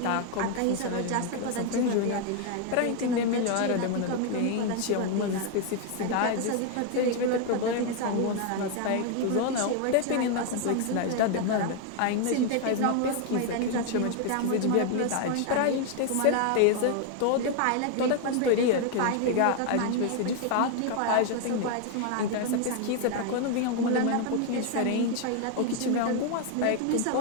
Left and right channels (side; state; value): both; different; correlation 0.00